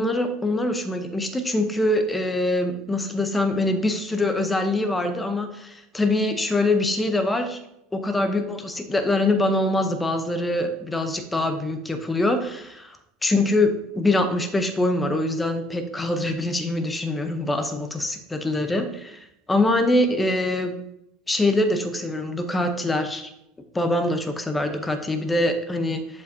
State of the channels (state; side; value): normal; both; correlation 0.70